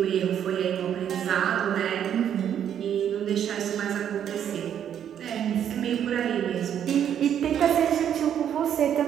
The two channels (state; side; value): quieter; left; 9.4 dB